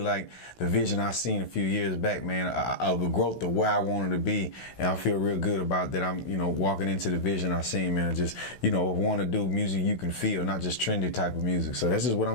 the vision I seen a few years back, man, of the growth of where I wanted to be. And I feel real good about that. I'm, walking into the vision I seen, man. Just, want to do music you can feel, not just trendy type of music. So that's just what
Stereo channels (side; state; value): right; late; 16 ms